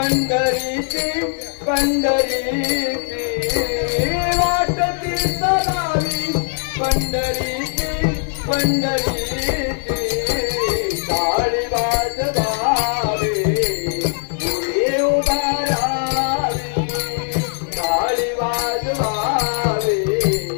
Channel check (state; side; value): silent; right; 64 dB below the other